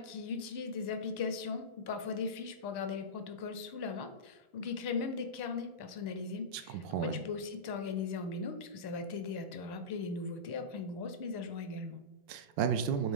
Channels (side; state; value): left; late; 1.1 ms